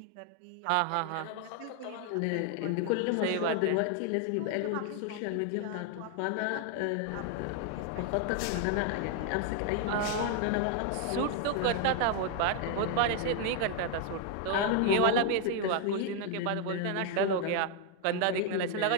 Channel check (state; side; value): different; both; correlation 0.01